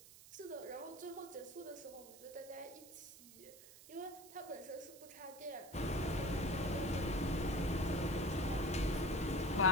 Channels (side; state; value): right; noise; hiss, 18 dB below the sound